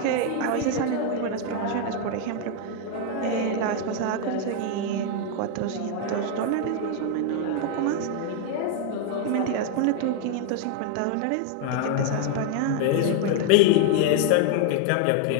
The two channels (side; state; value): both; different; correlation 0.00